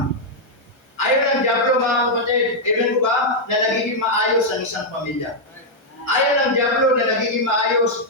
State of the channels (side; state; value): right; late; 1.3 ms